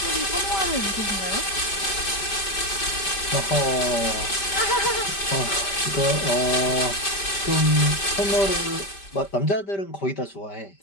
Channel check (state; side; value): late; right; 5.1 ms